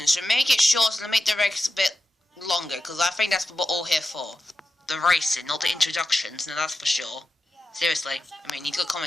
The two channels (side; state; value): both; normal; correlation 0.91